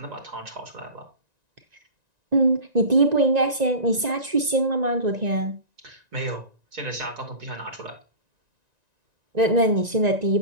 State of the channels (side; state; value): left; late; 1.9 ms